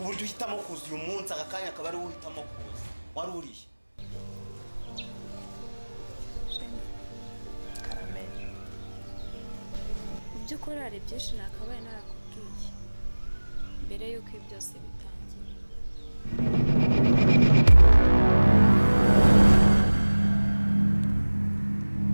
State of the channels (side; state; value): both; inverted; correlation -1.00